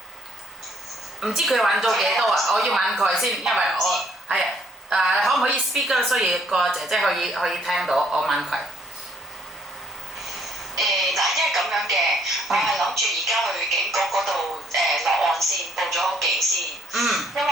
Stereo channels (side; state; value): both; normal; correlation 0.66